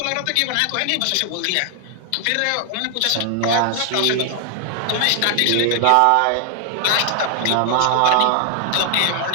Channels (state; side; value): different; both; correlation 0.00